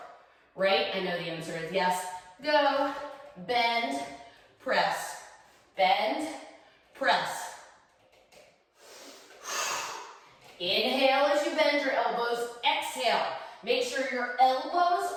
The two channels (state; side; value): identical; both; correlation 1.00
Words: right? I know the answer is yes. Go, bend, press, bend, press. Inhale as you bend your elbows, exhale. Make sure your elbows